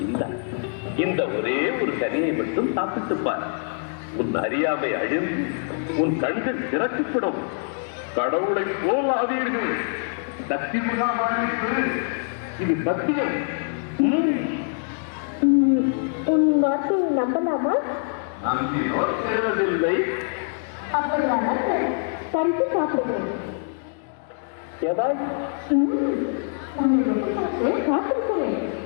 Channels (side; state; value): right; silent; 60 dB below the other